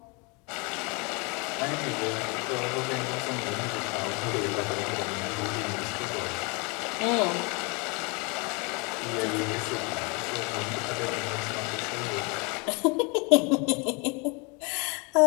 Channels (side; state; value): right; quieter; 30.6 dB